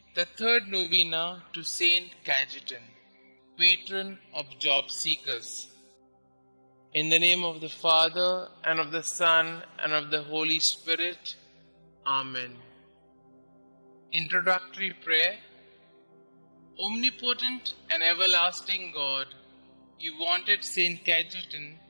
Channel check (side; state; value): both; inverted; correlation -1.00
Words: the third novena to Saint Cajetan, patron of job seekers. In the name of the Father, and of the Son, and of the Holy Spirit. Amen. Introductory Prayer. Omnipotent and everlasting God, you wanted Saint Cajetan